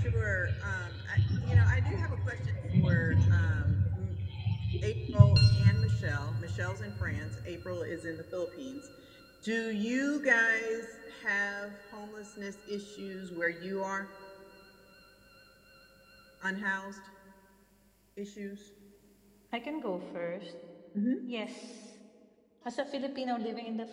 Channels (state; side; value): identical; both; correlation 1.00